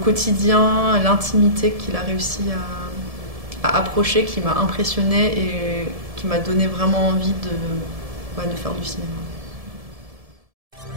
quotidien, l'intimité qu'il a réussi à approcher qui m'a impressionnée et qui m'a donné vraiment envie de faire du cinéma.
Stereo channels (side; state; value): left; late; 1.7 ms